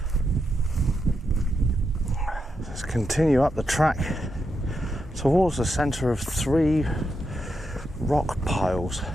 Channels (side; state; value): both; normal; correlation 0.85